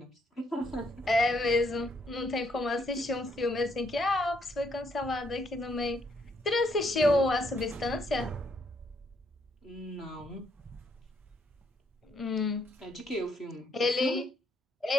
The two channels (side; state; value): both; normal; correlation 0.72